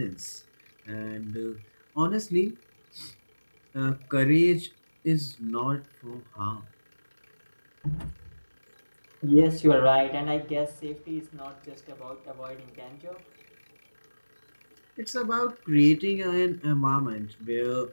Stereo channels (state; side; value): inverted; both; correlation -1.00